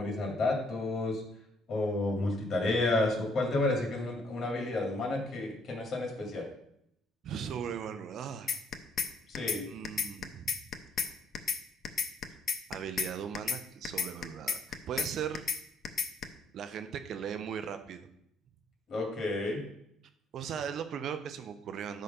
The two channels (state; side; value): normal; both; correlation 0.67